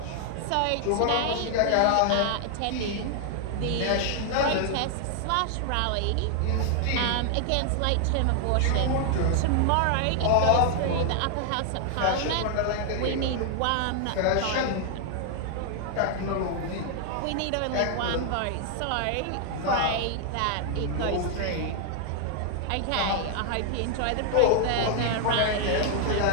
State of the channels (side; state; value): both; different; correlation 0.00